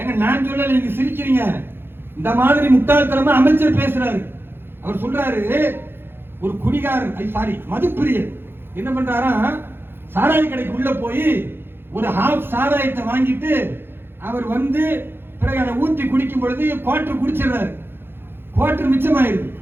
நான் சொல்லல, நீங்க சிரிக்கிறீங்க. இந்த மாதிரி முட்டாள்தனமா அமைச்சர் பேசுறாரு. அவர் சொல்றாரு, ஒரு குடிகாரன் சாரி மதுப்பிரியர் என்ன பண்றாரா, சாராய கடைக்கு உள்ள போய் ஒரு ஹாஃப் சாராயத்தை வாங்கிட்டு அவர் வந்து பிறகு அதை ஊத்தி குடிக்கும் பொழுது குவார்டர் குடிச்சிடுறாரு, குவார்டர் மிச்சமாயிருது.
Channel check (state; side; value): late; left; 0.10 ms